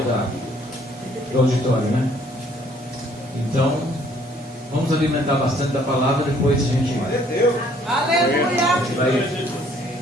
fora do auditório, né? Então, vamos alimentar bastante da palavra, depois a gente vai. Aleluia! A gente vai,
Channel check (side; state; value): both; normal; correlation 0.61